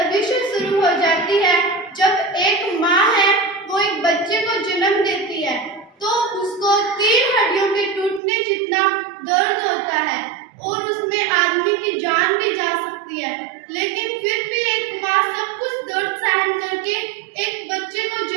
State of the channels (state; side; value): drops out; left; at 8.2 s